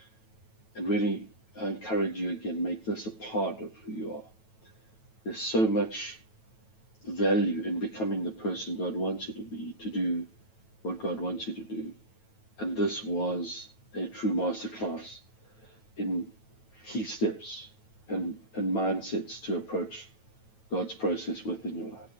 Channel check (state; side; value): late; right; 9.2 ms